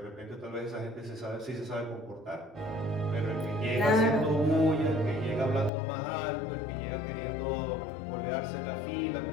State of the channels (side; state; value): right; drops out; at 5.7 s